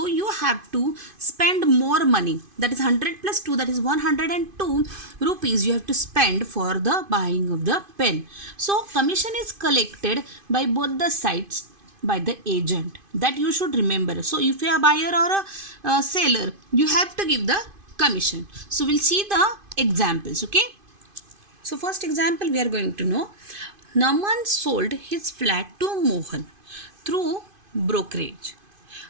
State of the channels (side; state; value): left; late; 2.5 ms